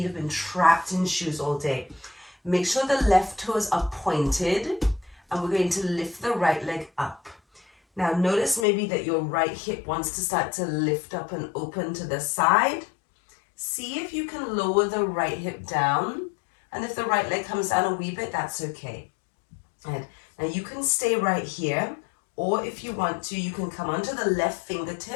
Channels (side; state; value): right; drops out; at 8.7 s